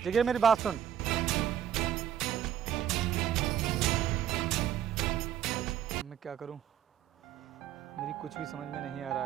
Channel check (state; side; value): quieter; left; 10.0 dB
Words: जगीरा मेरी बात सुन। मैं क्या करूं? मेरी कुछ भी समझ में नहीं आ रहा